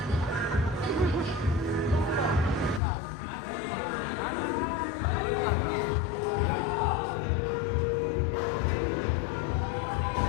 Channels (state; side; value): drops out; right; at 2.8 s